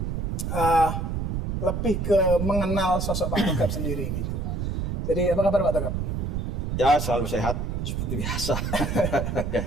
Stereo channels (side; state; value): right; noise; rumble, 2 dB below the sound